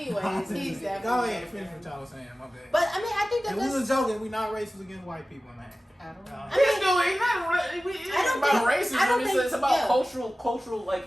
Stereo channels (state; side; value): normal; both; correlation 0.96